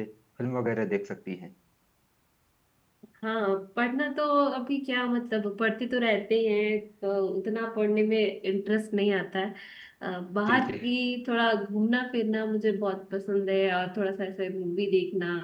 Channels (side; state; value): both; identical; correlation 1.00